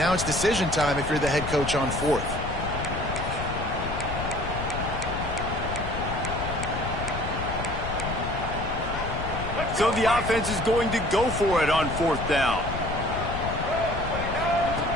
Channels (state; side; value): noise; left; rumble, 5 dB below the sound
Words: it's decision time if you're the head coach on 4th. So the offense is going to go for it on 4th down.